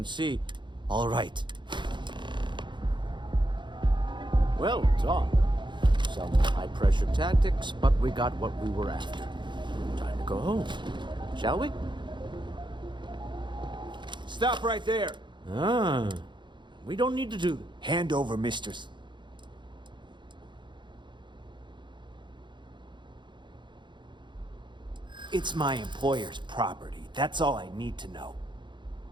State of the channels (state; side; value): late; left; 0.23 ms